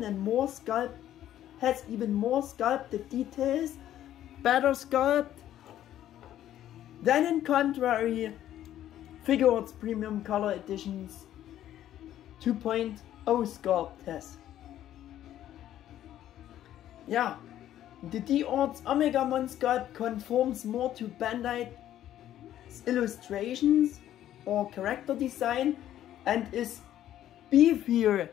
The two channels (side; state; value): right; quieter; 12.0 dB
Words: more sculpted details, better sculpt than in contrary Figuarts Premium Color Editions 2.0 sculpt has. Yeah, the D-Arts Omegamon sculpt conforms more to Bandai's illustrations or character design and is beefier